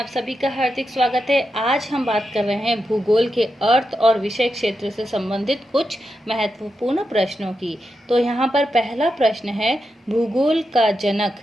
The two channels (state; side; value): normal; both; correlation 0.87